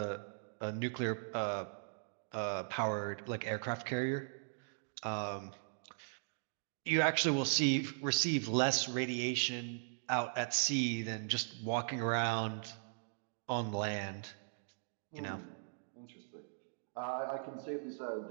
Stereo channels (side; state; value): left; silent; digital silence